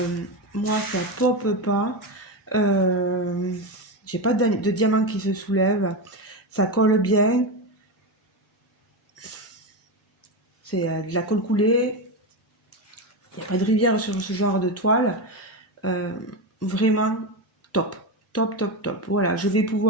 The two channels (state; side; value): normal; both; correlation 0.14